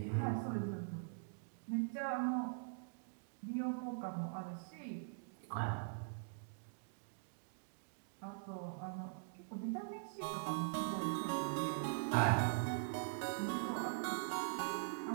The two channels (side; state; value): left; silent; digital silence